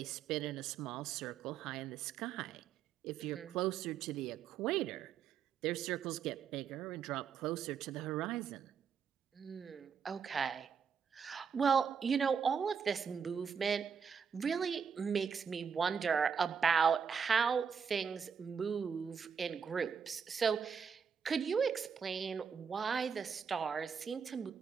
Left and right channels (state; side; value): quieter; left; 6.6 dB